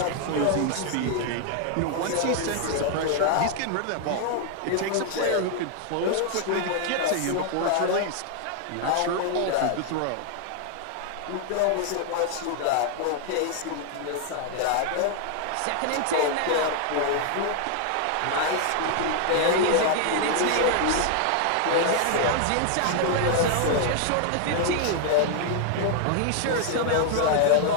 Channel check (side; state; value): both; different; correlation 0.00